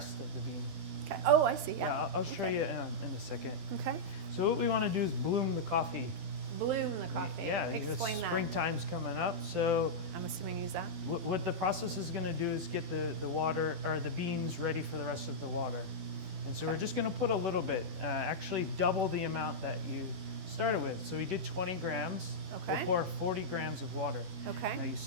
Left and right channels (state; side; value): late; left; 12 ms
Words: of the bean. Okay. Oh, I see. Yeah, Yeah. I'll show you in a second. Okay. So what we want to do is bloom the coffee. Bloom the coffee. Yeah, Explain that. springtime's coming up. So I'm assuming use that. what the process is going to do is get the water or the beans ready for the rest of the water. And so we're just going to put a little bit, actually double the amount that you started with. So we did 20 grams. Okay. We'll pour 40 grams of water. Okay. Now you